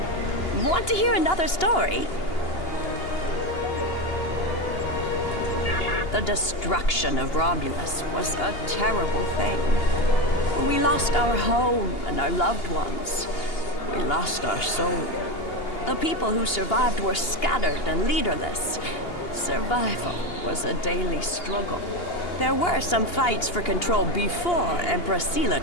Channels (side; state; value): right; late; 2.8 ms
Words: Want to hear another story? The destruction of Romulus was a terrible thing. We lost our home and our loved ones. We lost our soul. The people who survived were scattered and leaderless. Survival was a daily struggle. There were some fights for control before Empress Sela